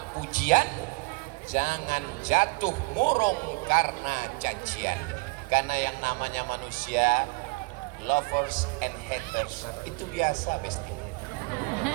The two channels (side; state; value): left; quieter; 27.4 dB